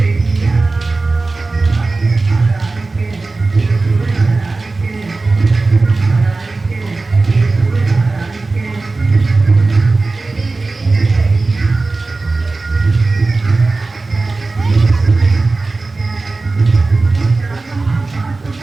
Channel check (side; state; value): left; quieter; 3.5 dB